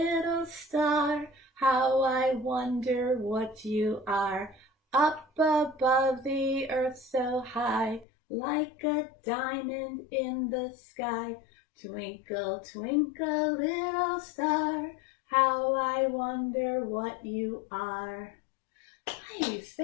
star, how I wonder what you are. Up above the earth so high, like a diamond in the sky. Twinkle, twinkle, little star, how I wonder what you are. Nice,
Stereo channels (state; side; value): drops out; right; at 8.1 s